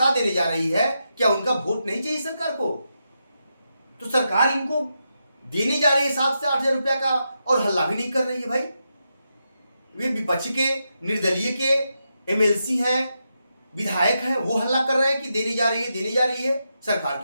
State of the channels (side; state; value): both; inverted; correlation -0.85